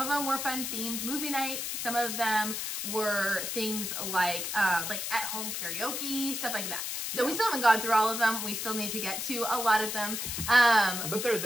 them were fun themed movie nights. Some of them were things like at-home karaoke, stuff like that. So we still haven't gone through all of them. We still need to get to a lot of them. But they're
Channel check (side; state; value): left; noise; hiss, 3 dB below the sound